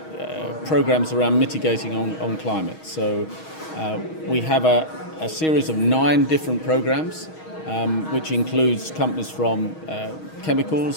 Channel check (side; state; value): right; late; 6.3 ms